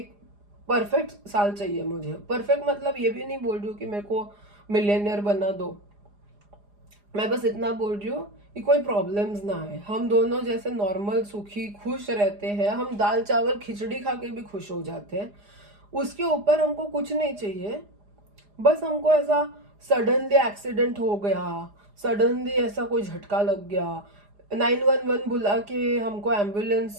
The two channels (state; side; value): late; left; 4.9 ms